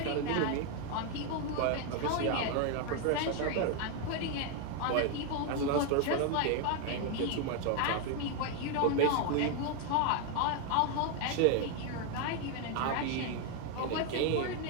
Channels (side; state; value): both; different; correlation 0.01